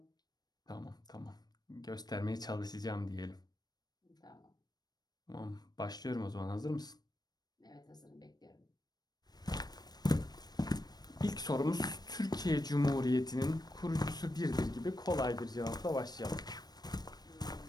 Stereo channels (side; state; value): right; late; 0.19 ms